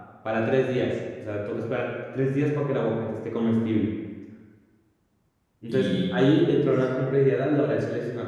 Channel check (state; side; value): identical; both; correlation 1.00